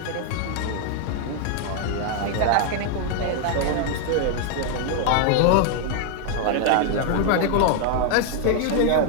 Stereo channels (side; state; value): both; different; correlation 0.00